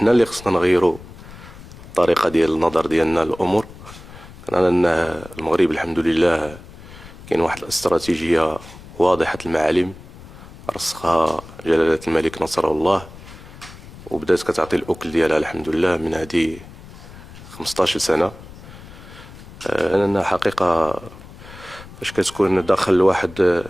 اللي خصنا نغيرو الطريقة ديال النظر ديالنا للأمور. أن المغرب الحمد لله كاين واحد الاستراتيجية واضحة المعالم رسخها جلالة الملك نصره الله، وبدات كتعطي الأكل ديالها الحمد لله من هذه 15 سنة. أنا حقيقة فاش كتكون داخل واحد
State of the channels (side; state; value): left; noise; rumble, 17 dB below the sound